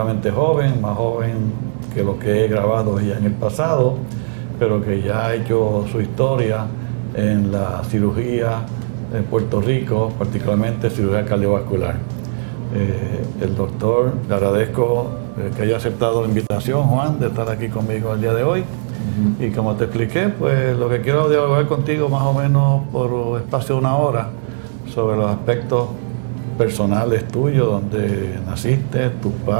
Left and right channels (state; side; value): silent; left; 67 dB below the other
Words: joven, más joven que lo que he grabado ya en el pasado, pero que ya ha hecho su historia en la cirugía en Puerto Rico, particularmente cirugía cardiovascular. El doctor, le agradezco que haya aceptado la invitación, Juan, de estar aquí conmigo el día de hoy. Y como te expliqué, pues lo que quiero dialogar contigo más o menos por espacio de una hora sobre los aspectos personales tuyos, donde naciste, tus